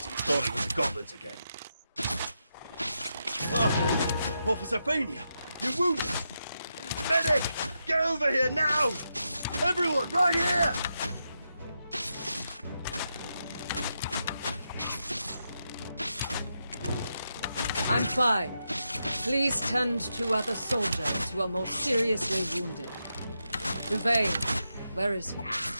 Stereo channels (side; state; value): both; inverted; correlation -0.85